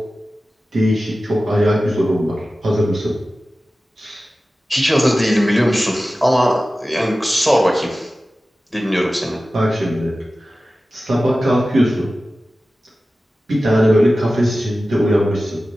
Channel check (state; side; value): normal; both; correlation 0.95